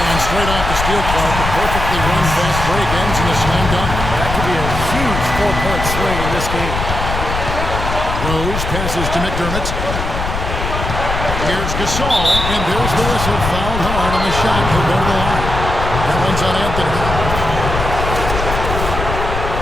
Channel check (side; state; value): left; noise; rumble, 4 dB below the sound